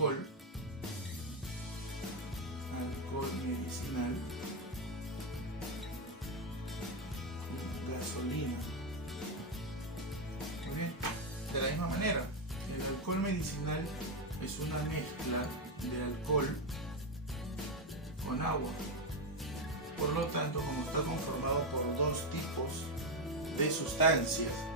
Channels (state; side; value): normal; both; correlation 0.06